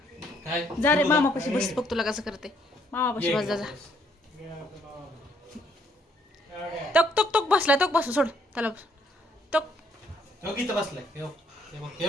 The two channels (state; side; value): normal; both; correlation 0.68